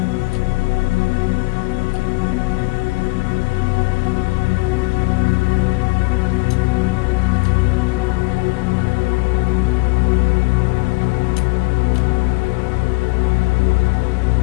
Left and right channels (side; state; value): right; quieter; 25.7 dB